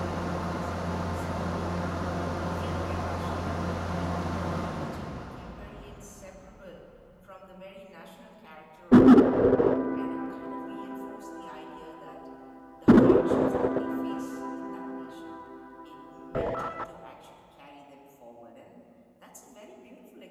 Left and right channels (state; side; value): identical; both; correlation 1.00